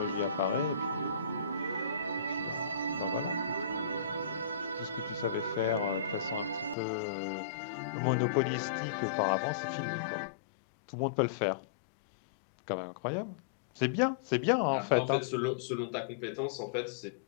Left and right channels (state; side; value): drops out; right; at 6.8 s